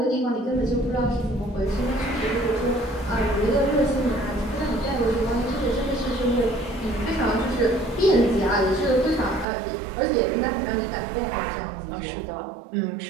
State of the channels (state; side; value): drops out; left; at 9.5 s